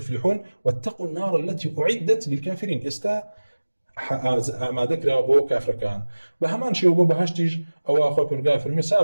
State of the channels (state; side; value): inverted; both; correlation -1.00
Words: واتقوا النار التي أعدت للكافرين استا ما ذكر بو كافر كان بهمان شيء بو بهشتيج او اخو بالغافر